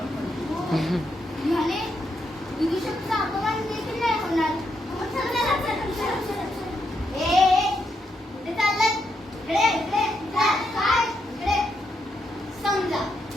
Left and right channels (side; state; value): both; normal; correlation 0.80